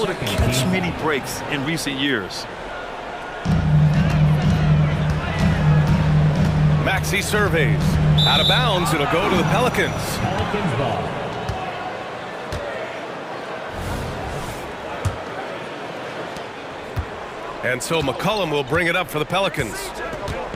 to catch many breaks in recent years. Maxey surveys. Out of bounds, it'll go to the Pelicans. Pelicans ball. And so McCollum will bring it up for the Pelicans.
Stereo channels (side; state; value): both; identical; correlation 1.00